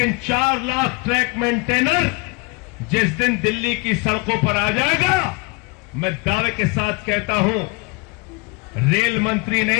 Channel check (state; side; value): quieter; right; 28.4 dB